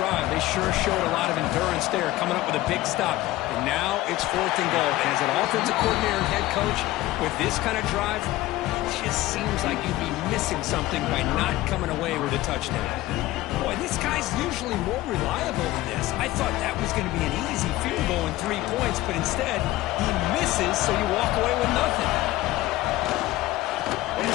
they sure showed a lot of endurance there, coming up with a big stop. And now it's fourth and goal. And as an offensive coordinator and head coach, with this kind of drive, it just seems like you'd be missing something by not coming away with a touchdown. Boy, this guy's usually more reliable than this. I thought that was going to be an easy field goal and 3 points, but instead, he misses, so you walk away with nothing.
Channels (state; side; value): quieter; right; 16.8 dB